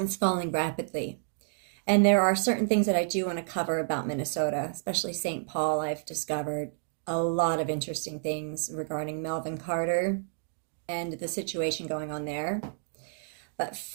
falling rapidly. And there are certain things that I do want to cover about Minnesota, especially St. Paul. I've discovered a lot of interesting things regarding Melvin Carter and the situation going on there. But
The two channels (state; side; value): silent; left; digital silence